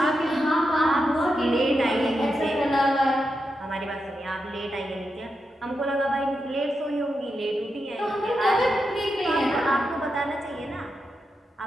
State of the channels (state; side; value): normal; both; correlation 0.87